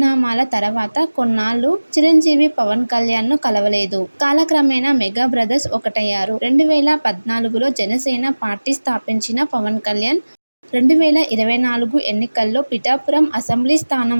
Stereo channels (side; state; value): both; inverted; correlation -1.00